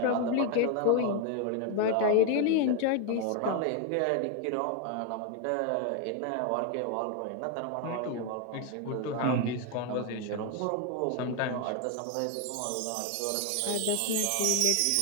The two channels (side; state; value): both; different; correlation 0.01